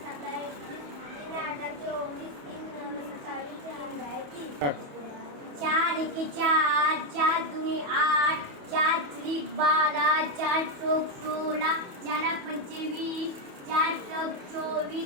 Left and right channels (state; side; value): late; left; 28 ms